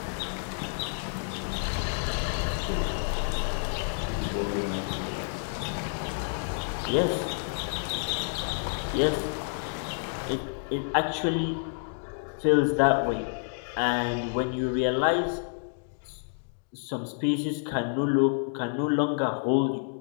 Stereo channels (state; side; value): silent; right; digital silence